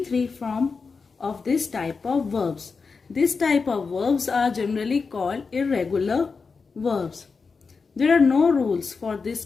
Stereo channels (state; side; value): quieter; right; 4.8 dB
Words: form of this type of verbs. This type of verbs are generally called irregular verbs. There are no rules for this